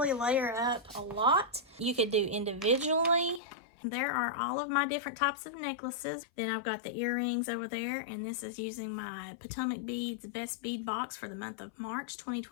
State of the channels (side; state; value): right; drops out; at 3.4 s